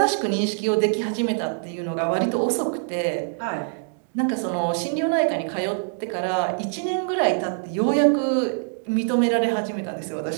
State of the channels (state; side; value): silent; left; digital silence